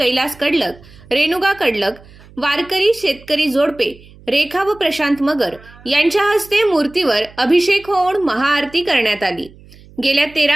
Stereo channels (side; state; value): right; noise; hum, 23 dB below the sound